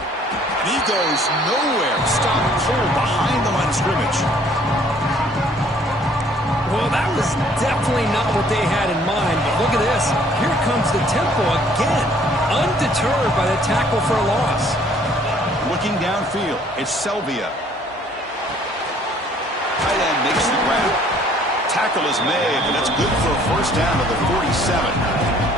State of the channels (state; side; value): normal; both; correlation 0.59